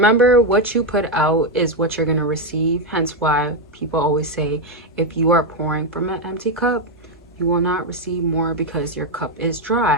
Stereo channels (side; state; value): both; normal; correlation 0.05